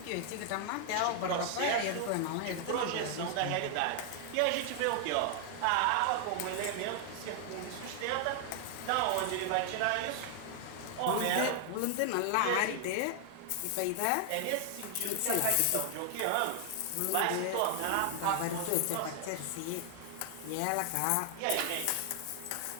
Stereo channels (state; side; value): different; both; correlation 0.00